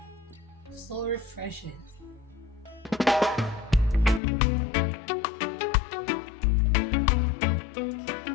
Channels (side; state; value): right; drops out; at 4.2 s